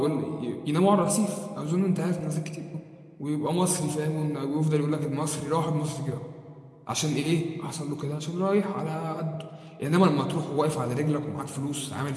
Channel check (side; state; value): both; identical; correlation 1.00